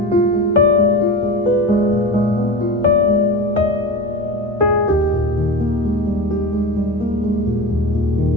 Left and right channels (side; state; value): both; normal; correlation 0.29